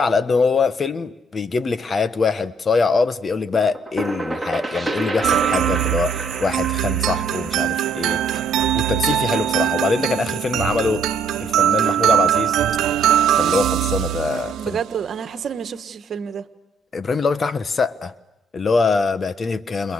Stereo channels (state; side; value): normal; both; correlation 0.66